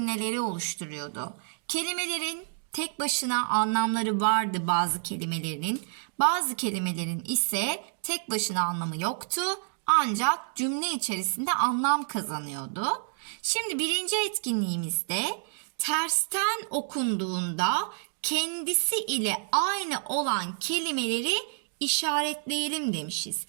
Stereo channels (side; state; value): left; silent; digital silence